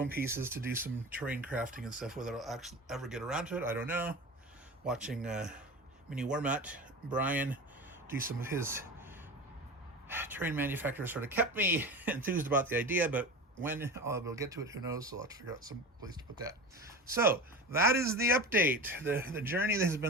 pieces to do some terrain crafting and stuff. Whether I'll actually ever get around to it, I don't know. Watching Mini Warmat Brian do some of his terrain manufacturers sort of kept me enthused about the idea, but when I'll be able to get to it, who knows? So I'll have to figure out some place to put that. So that is the update. The journey that has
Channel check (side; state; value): both; normal; correlation 0.29